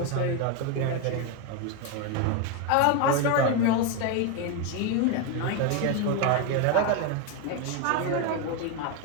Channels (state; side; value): different; both; correlation 0.02